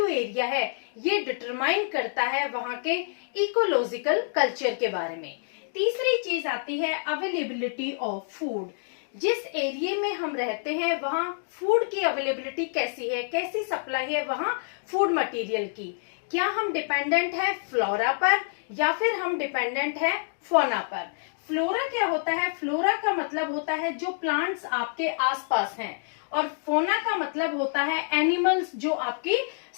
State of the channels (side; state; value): right; silent; digital silence